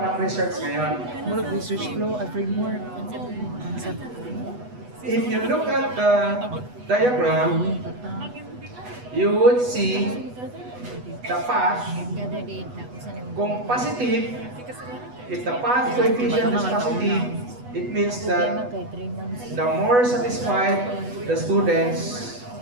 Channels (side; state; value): left; late; 8.1 ms